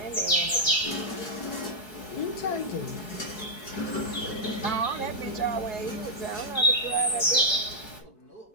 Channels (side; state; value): right; late; 4.7 ms